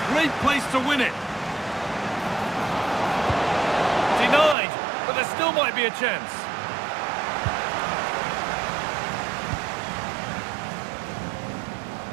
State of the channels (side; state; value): left; drops out; at 4.5 s